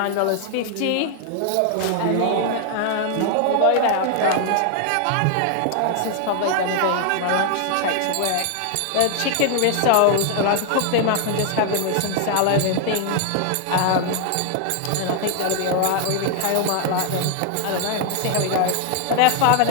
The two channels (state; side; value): different; both; correlation 0.00